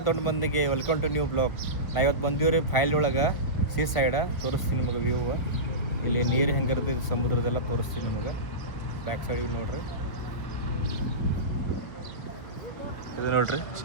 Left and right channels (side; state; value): right; late; 1.6 ms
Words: ದೊಡ್ಡ ಮಂದಿಗೆ ವೆಲ್ಕಮ್ ಟು ನ್ಯೂ ಬ್ಲಾಗ್. ನಾ ಇವತ್ತು ಬಂದೀವ್ರಿ ಫೈಲ್ ಒಳಗೆ ಸೀ ಸೈಡ ತೋರಿಸ್ತೀನಿ ನಿಮಗೆ ವ್ಯೂ. ಇಲ್ಲಿ ನೀರು ಹೆಂಗಿರ್ತದೆ ಸಮುದ್ರದೆಲ್ಲ ತೋರಿಸ್ತೀನಿ ನಿಮಗೆ. ಬ್ಯಾಕ್ ಸೈಡಿಗೆ ನೋಡ್ರಿ, ಇದು ನೋಡ್ರಿ